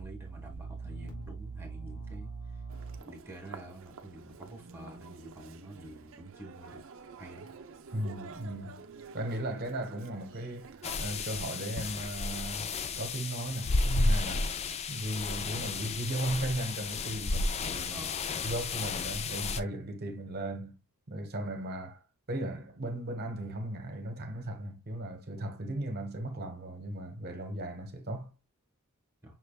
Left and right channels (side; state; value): both; normal; correlation 0.61